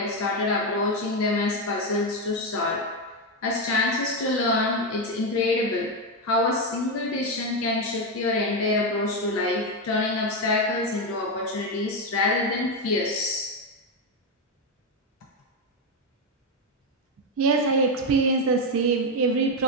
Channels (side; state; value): both; normal; correlation 0.08